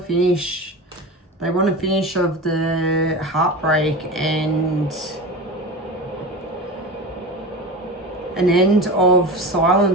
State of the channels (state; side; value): normal; both; correlation 0.28